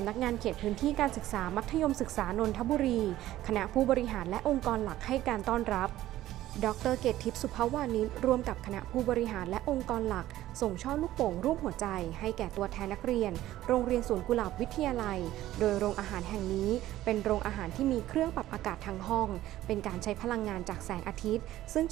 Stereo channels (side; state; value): left; quieter; 14.5 dB